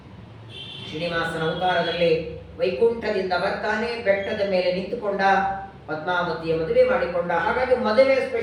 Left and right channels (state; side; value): identical; both; correlation 1.00